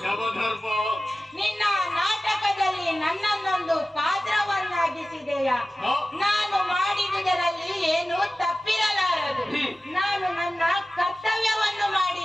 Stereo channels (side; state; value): both; normal; correlation 0.96